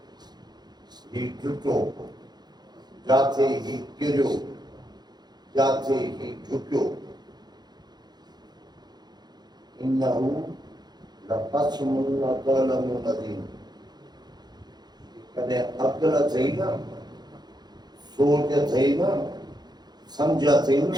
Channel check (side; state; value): left; late; 0.20 ms